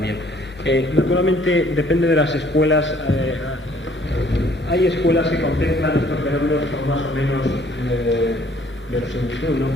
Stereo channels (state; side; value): normal; both; correlation 0.60